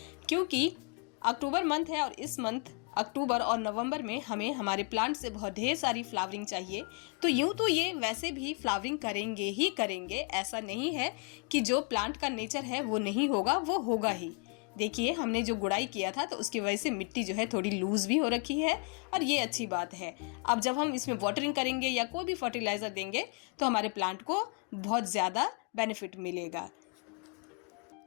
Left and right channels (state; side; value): quieter; right; 35.5 dB